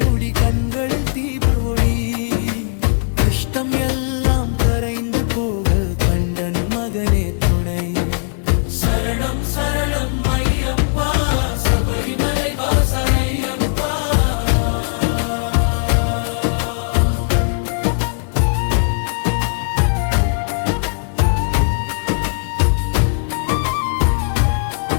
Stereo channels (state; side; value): silent; right; 56 dB below the other